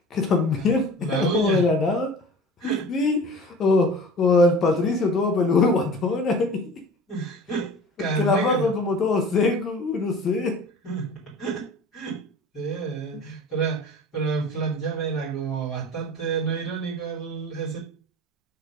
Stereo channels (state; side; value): normal; both; correlation 0.41